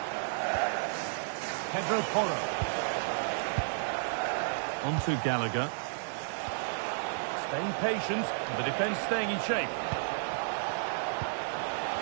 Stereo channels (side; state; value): left; silent; 56 dB below the other